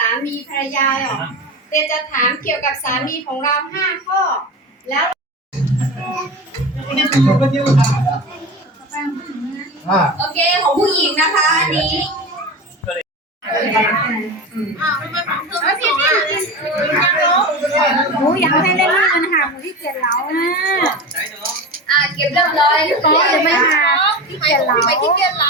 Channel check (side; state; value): both; normal; correlation 0.27